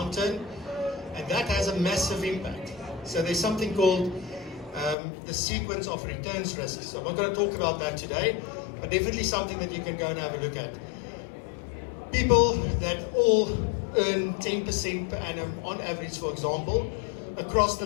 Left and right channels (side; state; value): right; drops out; at 5.0 s